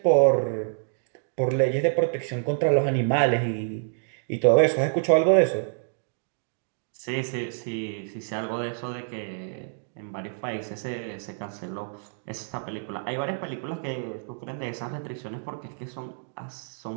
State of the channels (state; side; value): silent; left; digital silence